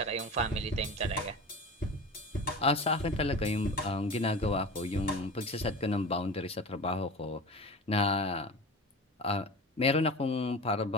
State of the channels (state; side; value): normal; both; correlation 0.33